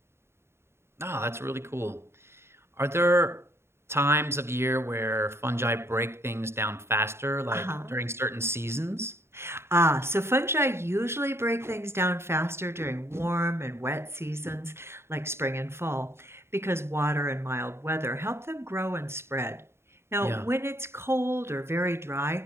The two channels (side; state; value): left; late; 0.12 ms